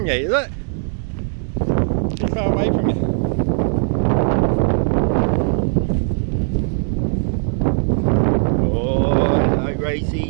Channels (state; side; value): silent; left; digital silence